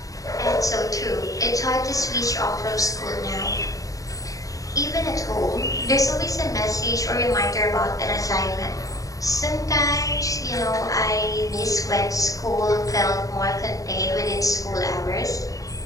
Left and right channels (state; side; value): late; right; 0.16 ms